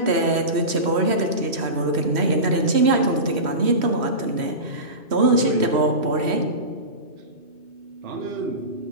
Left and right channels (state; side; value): late; left; 3.1 ms